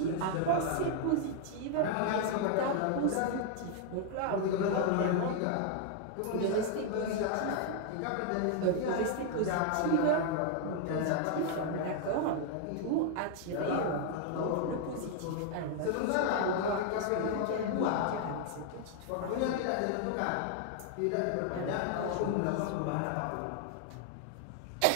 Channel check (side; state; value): both; different; correlation 0.00